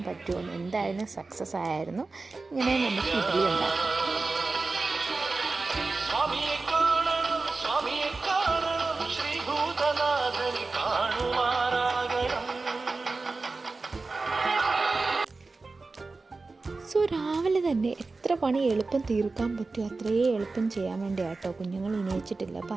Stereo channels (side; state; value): left; quieter; 3.7 dB